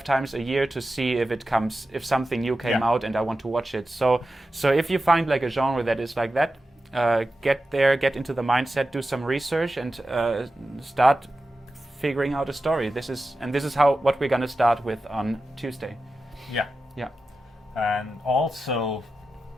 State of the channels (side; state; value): both; normal; correlation 0.92